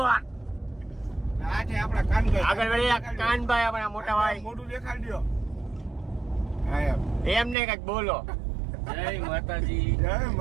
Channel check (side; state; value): left; drops out; at 7.6 s